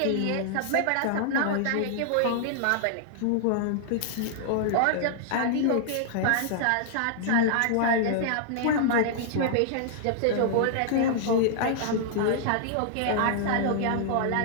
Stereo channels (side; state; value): both; different; correlation -0.01